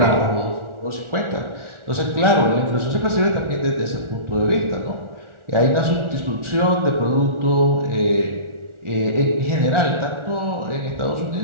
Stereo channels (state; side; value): late; left; 1.4 ms